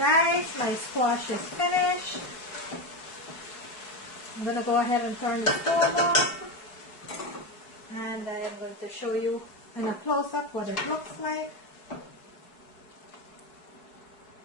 my squash is finished. I'm going to go ahead and turn the stove off. And I am going to show you in a close-up what it looks like.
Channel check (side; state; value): right; late; 4.7 ms